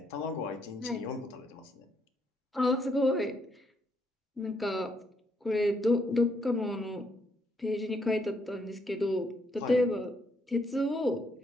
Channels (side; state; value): both; normal; correlation 0.74